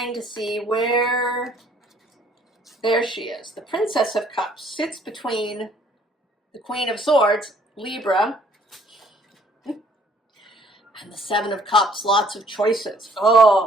to see where, there she is. The Princess of Cups sits between the Queen of Swords, Libra, and the Seven of Cups, lots of choices.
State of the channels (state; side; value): normal; both; correlation 0.61